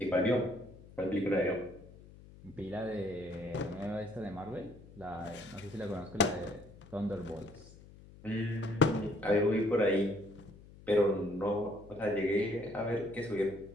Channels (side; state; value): left; noise; hum, 20 dB below the sound